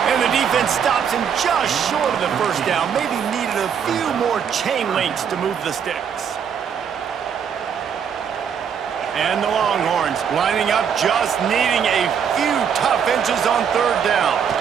And the defense stops him just short of the 1st down. Maybe needed a few more chain links to move the sticks. And the Longhorns lining up, just needing a few tough inches on 3rd down.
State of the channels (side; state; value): left; quieter; 7.6 dB